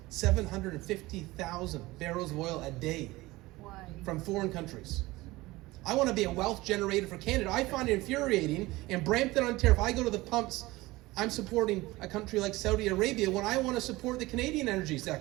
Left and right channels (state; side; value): quieter; left; 19.9 dB